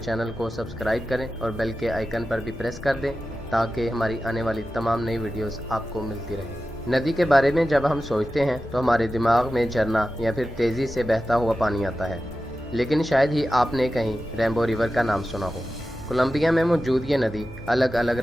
को सब्सक्राइब करें और बेल के आइकन पर भी प्रेस कर दें ताकि हमारी आने वाली तमाम नई वीडियोस आपको मिलती रहे। नदी के बारे में जब हम सोचते हैं तो हमारे दिमाग में झरना या फिर तेज़ी से बहता हुआ पानी आता है, लेकिन शायद ही आपने कहीं रेनबो रिवर का नाम सुना हो। कोलंबिया में मौजूद ये नदी अलग अलग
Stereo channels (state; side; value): normal; both; correlation 0.93